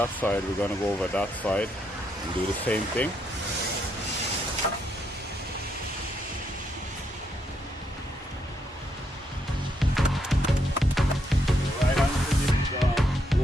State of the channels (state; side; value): normal; both; correlation 0.77